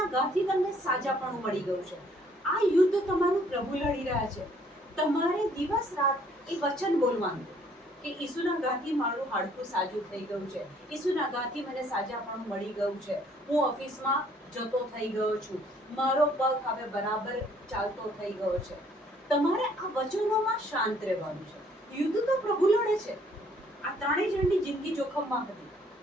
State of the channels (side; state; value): both; normal; correlation 0.62